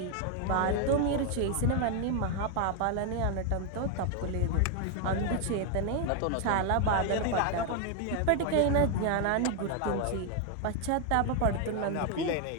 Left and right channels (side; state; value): both; different; correlation 0.01